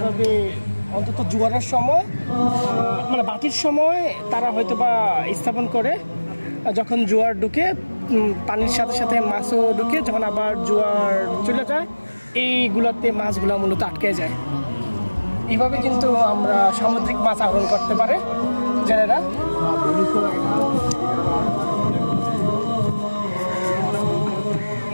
অন্তত জোয়ারের সময় মানে বাটির সময় তারা হয়তো বা স্থাপন করে। যখন জোয়ার ঢুকে পানির সাথে সাথে মাছও ঢুকে, যখন আবার জোয়ার চলে যায় এইগুলোতে মাছগুলো মূলত আটকে যায়। এইভাবে কিন্তু আমরা সামুদ্রিক মাছ আহরণ করতে পারে জেলেরা।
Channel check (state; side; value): inverted; both; correlation -1.00